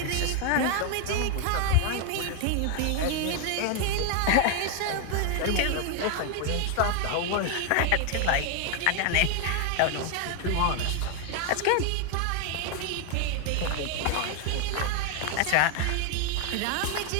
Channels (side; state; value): both; different; correlation 0.01